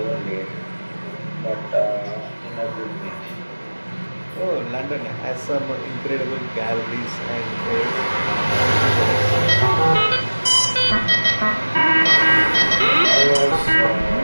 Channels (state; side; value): inverted; both; correlation -1.00